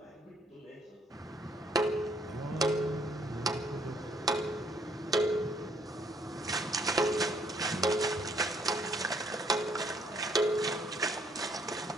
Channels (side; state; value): both; normal; correlation 0.67